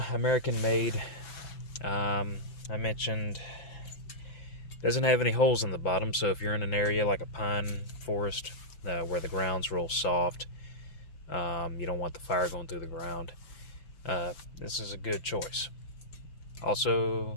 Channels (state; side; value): late; right; 5.9 ms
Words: American made. I mentioned doesn't have any holes in the bottom, so if you're in an area like a pine forest where the ground's real soft, you don't want the fire going through the ground, this is a good choice.